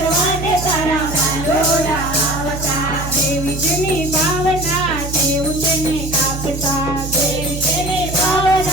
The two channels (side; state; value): right; noise; hum, 7 dB below the sound